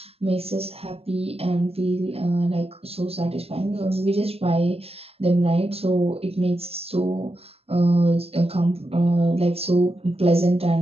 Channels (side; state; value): left; late; 0.29 ms